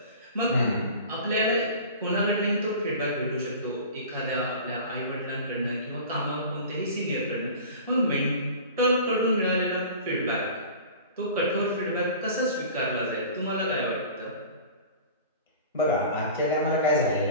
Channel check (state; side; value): inverted; both; correlation -0.39